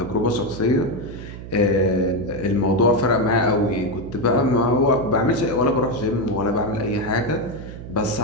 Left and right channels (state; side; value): noise; right; hum, 12 dB below the sound